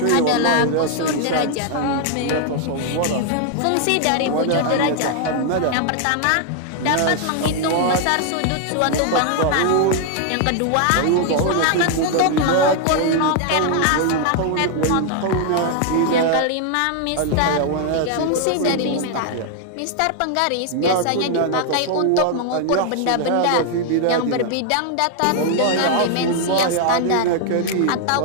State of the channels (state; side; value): different; both; correlation 0.00